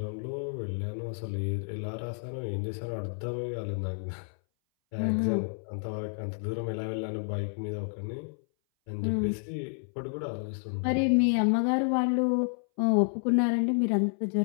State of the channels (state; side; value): silent; right; 58 dB below the other